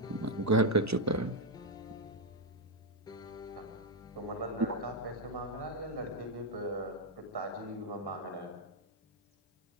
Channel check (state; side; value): normal; both; correlation 0.01